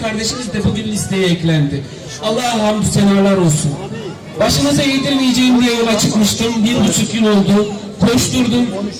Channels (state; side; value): identical; both; correlation 1.00